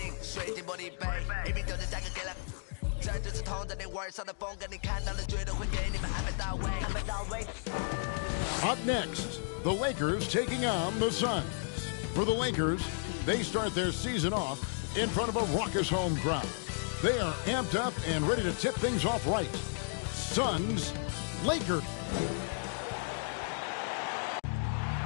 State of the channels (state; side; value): silent; right; digital silence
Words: 水晶玻璃杯一瓶酒的价格给了这就是同在你玩上的风格，你看到了绝对会给你们安排到位。Up next, the Lakers taking on the Suns. For the Lakers, they start their season off in front of a raucous home crowd. They are amped up and ready to tip things off right. Suns, Lakers.